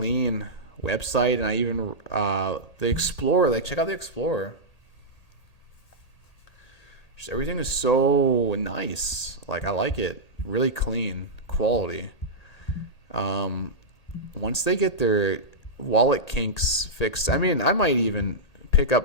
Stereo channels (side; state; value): right; late; 1.8 ms